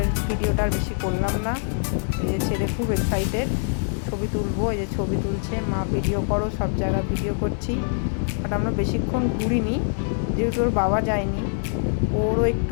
ভিডিওটা আর বেশি করলাম না। এই যে ছেলে খুব এক্সাইটেড, ছবি তুলবো। এই যে ছবি তুলছে, মা ভিডিও করো, সব জায়গা ভিডিও করছি। বাট আমরা বেশিক্ষণ ঘুরিনি, যেহেতু ওর বাবা যায়নি। ওরও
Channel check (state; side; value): silent; right; 63 dB below the other